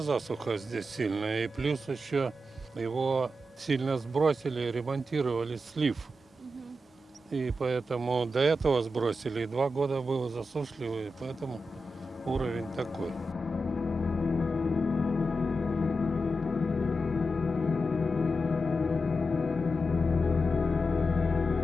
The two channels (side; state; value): both; normal; correlation 0.89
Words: засуха здесь сильная, и плюс еще его сильно сбросили, ремонтировали слив. И поэтому до этого сбросили, и 2 года было засушливо, и поэтому уровень такой.